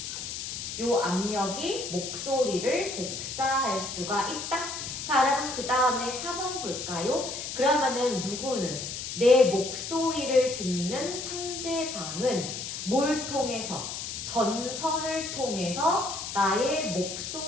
이 압력이 목소리를 복사할 수가 있다. 자, 여러분 그 다음에 4번 볼까요? 그러면은 누구는 내 목소리를 듣는 상대방은 뭘 통해서? 전선을 통해서 나의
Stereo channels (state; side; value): noise; left; hiss, 6 dB below the sound